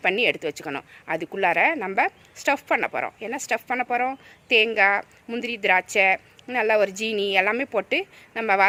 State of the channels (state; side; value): identical; both; correlation 1.00